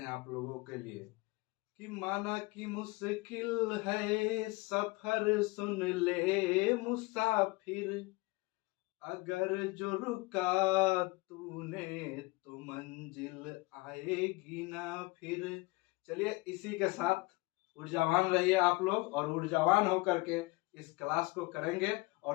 आप लोगों के लिए कि माना कि मुश्किल है सफर, सुन ले मुसाफिर, अगर जो रुका तूने तो मंजिल आएगी ना फिर। चलिए इसी के साथ ऊर्जावान रहिए आप लोग, और ऊर्जावान होकर के इस क्लास को करेंगे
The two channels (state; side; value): quieter; right; 24.3 dB